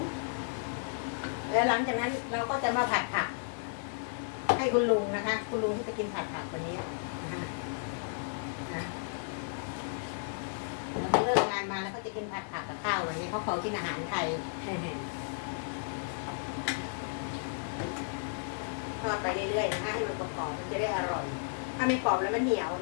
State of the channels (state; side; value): silent; right; digital silence